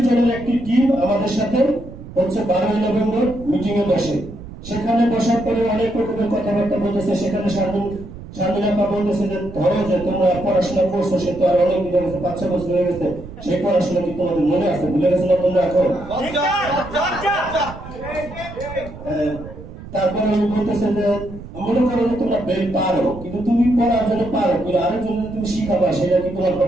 জনের একটি টিম আমাদের সাথে 12 নভেম্বর মিটিং এ বসে। সেখানে বসার পরে অনেক রকমের কথাবার্তা বলতেছে। সেখানে শারমিনা বলতেছে যে ধরো যে তোমরা পড়াশোনা করছো, সে তো আর অনেক দিন হয়ে গেছে, 5-6 বছর হয়ে গেছে, সেই পড়াশোনা কি তোমাদের মনে আছে? ভুলে গেছো না তোমরা এখন? তারপরে উনি বলতেছে যে মনে করো যে তোমরা বেল পারো, কিন্তু তুমি পড়ার জন্য পারো, কিন্তু আরেকজন তুমি শিখাবা, সেটা কি তোমার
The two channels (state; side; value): noise; right; rumble, 14 dB below the sound